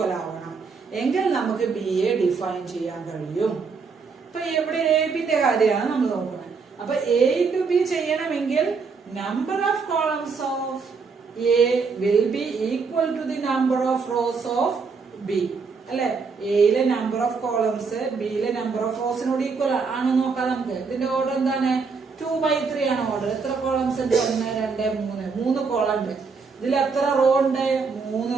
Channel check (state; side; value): quieter; left; 5.0 dB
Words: ആവണം. എങ്കിൽ നമുക്ക് ബി എ ഡിഫൈൻ ചെയ്യാൻ കഴിയും. ഇപ്പൊ ഇവിടെ എ ബിന്റെ കാര്യമാണ് നമ്മൾ നോക്കുന്നത്. അപ്പൊ എ ഇൻറ്റു ബി ചെയ്യണമെങ്കിൽ number of columns of A will be equal to the number of rows of B. അല്ലെ, എയിലെ നമ്പർ ഓഫ് കോളംസ് ബിയിലെ നമ്പർ ഓഫ് റോസിനോട് ഈക്വൽ ആണോ നോക്കാം നമുക്ക്. ഇതിന്റെ ഓർഡർ എന്താണ്? 2/3 ആണ് ഓർഡർ. എത്ര കോളംസ് ഉണ്ട്? 1 2 3 കോളം ഉണ്ട്. ഇതിൽ എത്ര റോ ഉണ്ട്?